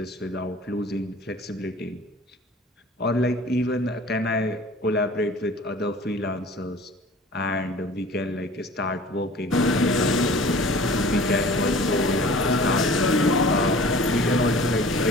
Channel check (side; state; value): both; normal; correlation 0.45